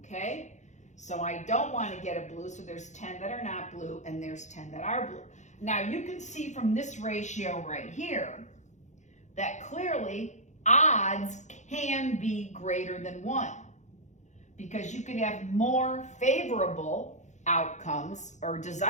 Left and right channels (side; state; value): right; late; 0.34 ms